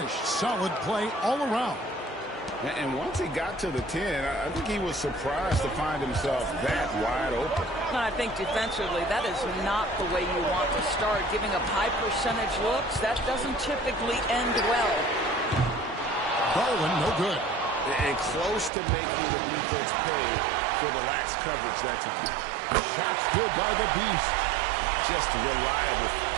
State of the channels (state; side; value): drops out; left; at 18.7 s